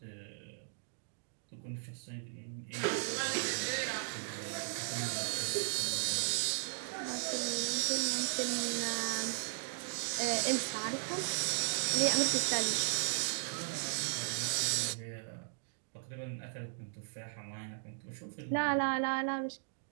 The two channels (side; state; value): left; silent; digital silence